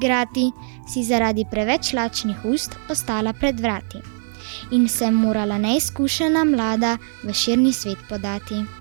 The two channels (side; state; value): left; silent; digital silence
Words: si zaradi preveč lačnih ust ostala pred vrati. In se morala neizkušena mlada v širni svet podati.